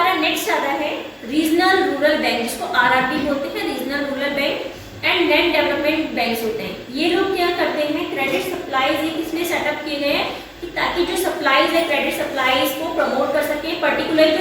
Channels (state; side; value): identical; both; correlation 1.00